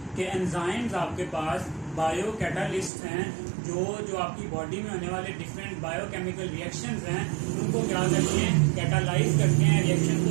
कि एंजाइम्स आपके पास बायो कैटालिस्ट हैं जो आपकी बॉडी में होने वाले डिफरेंट बायोकेमिकल रिएक्शंस हैं उनको क्या करते हैं, कैटालाइज करते हैं, रिएक्शन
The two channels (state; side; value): drops out; left; at 2.9 s